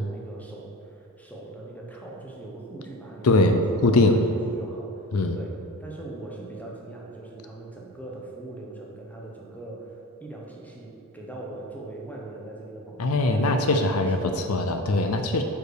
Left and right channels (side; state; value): both; normal; correlation 0.33